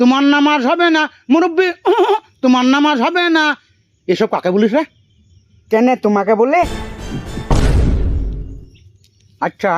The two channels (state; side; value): identical; both; correlation 1.00